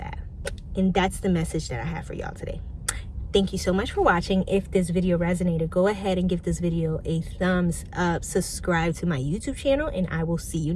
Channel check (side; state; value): both; identical; correlation 1.00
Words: And that's the message that I have for y'all today. Thank you so much for watching. If this video resonated, go ahead and give this video a thumbs up, subscribe to my YouTube channel, and I will see you